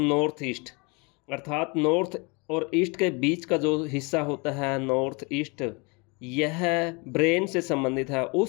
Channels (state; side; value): quieter; right; 29.9 dB